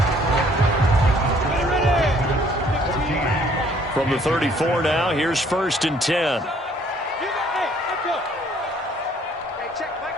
From the 34 now, here's 1st and 10.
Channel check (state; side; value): normal; both; correlation 0.61